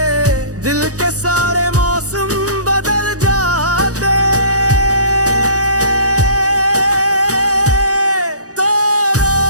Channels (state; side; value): late; left; 0.66 ms